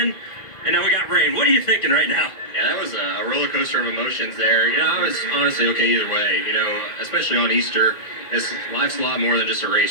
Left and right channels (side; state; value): right; late; 2.1 ms